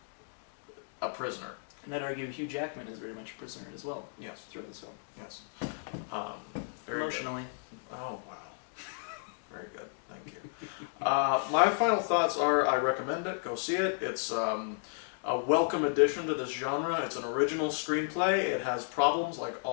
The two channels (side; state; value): right; silent; digital silence